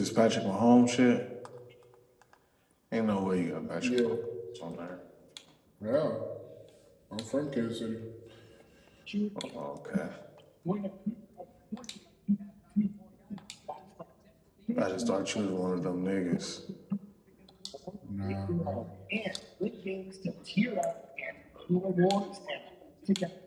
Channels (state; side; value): identical; both; correlation 1.00